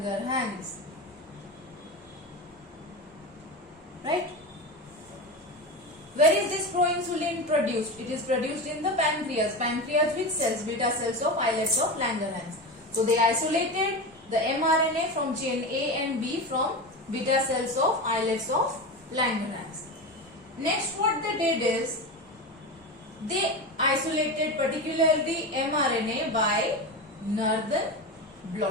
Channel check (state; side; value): normal; both; correlation 0.22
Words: Right? Where is this proinsulin produced? It is produced in the pancreas. Pancreas which cells? Beta cells of islets of Langerhans. So they isolated the mRNA from chain A and B from beta cells of islets of Langerhans. Next what they did is, they isolated particularly mRNA by Northern